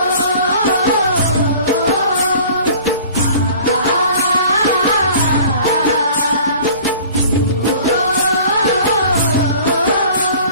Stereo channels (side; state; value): both; inverted; correlation -0.47